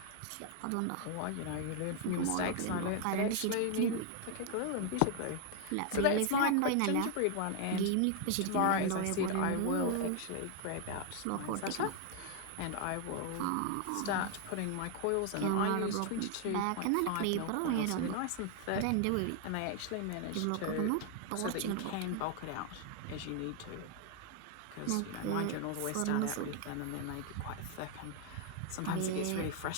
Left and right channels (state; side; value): different; both; correlation 0.00